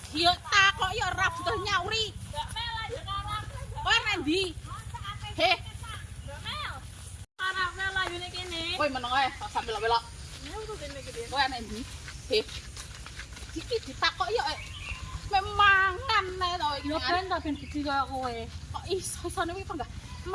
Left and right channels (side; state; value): both; identical; correlation 1.00